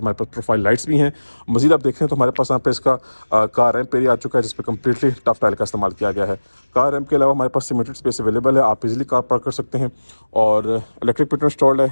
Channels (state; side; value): inverted; both; correlation -1.00